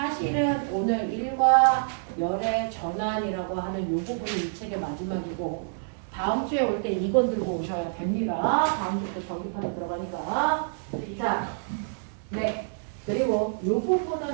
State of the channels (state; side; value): silent; left; digital silence